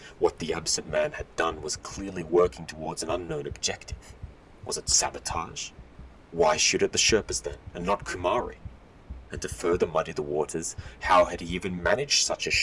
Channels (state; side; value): identical; both; correlation 1.00